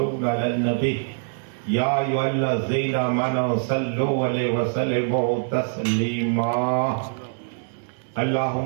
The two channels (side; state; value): left; silent; digital silence